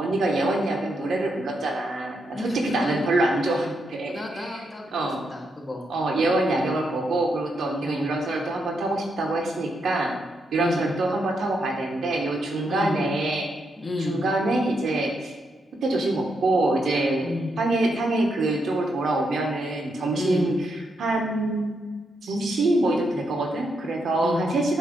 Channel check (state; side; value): normal; both; correlation 0.81